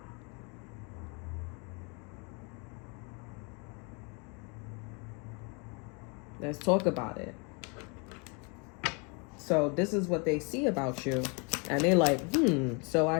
Let's talk about it. So this is what they see about you. And they're like, so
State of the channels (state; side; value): quieter; right; 33.6 dB